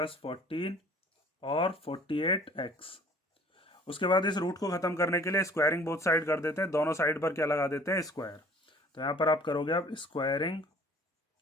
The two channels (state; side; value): normal; both; correlation 0.52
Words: 14 और 48x। उसके बाद इस रूट को खत्म करने के लिए स्क्वायरिंग बोथ साइड कर देते हैं, दोनों साइड पर क्या लगा देते हैं स्क्वायर। तो यहाँ पर आप करोगे अब स्क्वायरिंग